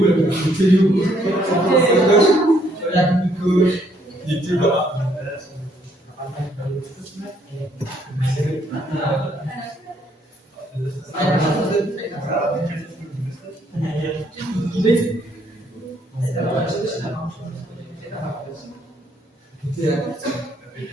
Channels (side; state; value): both; normal; correlation 0.69